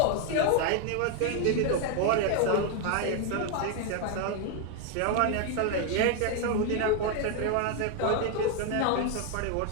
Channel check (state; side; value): different; both; correlation 0.01